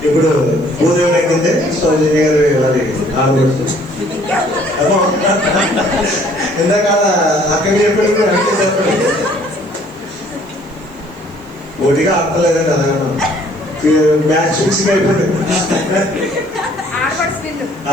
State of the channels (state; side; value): noise; right; hiss, 30 dB below the sound